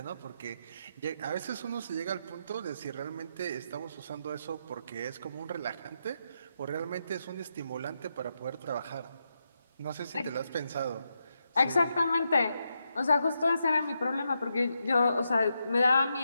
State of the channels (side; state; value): both; inverted; correlation -0.83